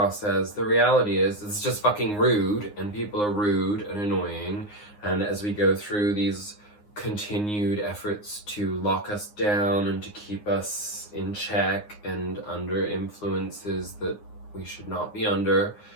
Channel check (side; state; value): right; late; 9.7 ms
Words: as? The reality is it's just fucking rude, and people are rude and annoying, and as we go through these continued efforts to lock us down and to keep us in check and under influences that we should not be under,